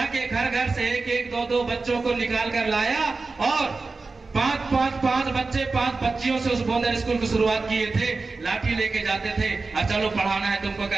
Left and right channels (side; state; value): left; quieter; 3.9 dB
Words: घर घर से एक एक दो दो बच्चों को निकाल कर लाया और पांच बच्चे 5 बच्चियों से उस बोंदर स्कूल की शुरुआत किए थे। लाठी लेके जाते थे और चलो पढ़ाना है तुमको